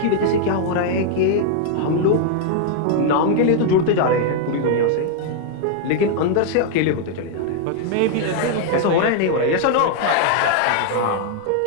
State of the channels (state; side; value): different; both; correlation 0.00